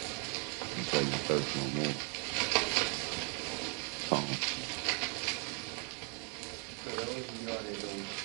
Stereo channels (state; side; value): quieter; left; 37.5 dB